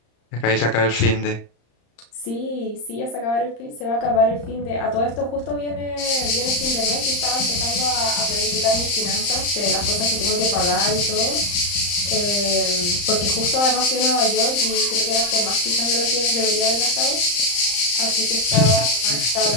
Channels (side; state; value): right; late; 35 ms